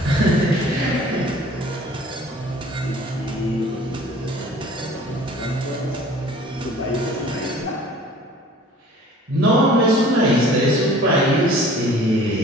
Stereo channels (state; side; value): normal; both; correlation 0.49